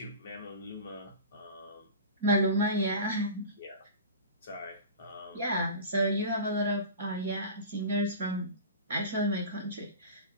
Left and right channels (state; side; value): inverted; both; correlation -0.34